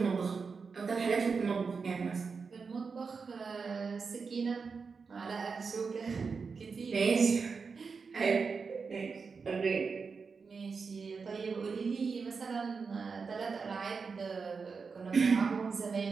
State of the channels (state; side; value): quieter; left; 5.1 dB